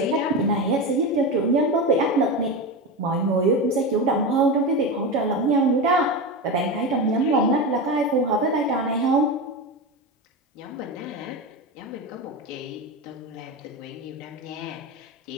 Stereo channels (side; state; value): both; normal; correlation 0.20